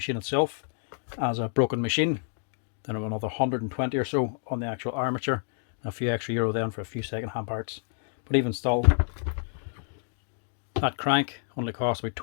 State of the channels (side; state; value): right; silent; digital silence